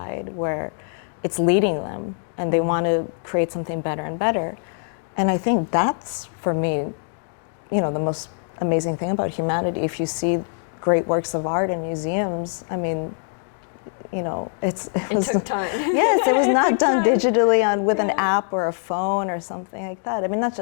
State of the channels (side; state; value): right; silent; digital silence